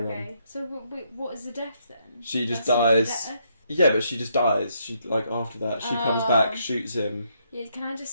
on. Okay. So what is the death then? She just That's dies. the death? Yeah, but she just dies. She after that, she comes back, shoots him. Yeah, can I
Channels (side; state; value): both; inverted; correlation -0.74